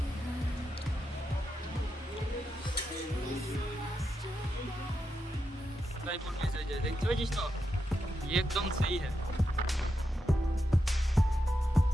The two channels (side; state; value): both; normal; correlation 0.86